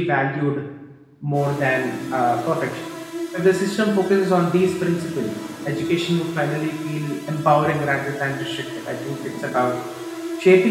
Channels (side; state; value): both; identical; correlation 1.00